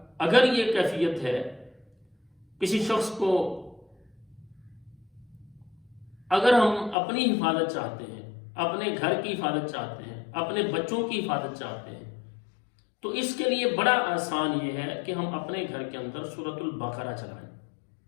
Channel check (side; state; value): right; drops out; at 7.0 s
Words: اگر یہ کیفیت ہے کسی شخص کو، اگر ہم اپنی حفاظت چاہتے ہیں، اپنے گھر کی حفاظت چاہتے ہیں، اپنے بچوں کی حفاظت چاہتے ہیں، تو اس کے لیے بڑا آسان یہ ہے کہ ہم اپنے گھر کے اندر سورۃ البقرہ چلائیں۔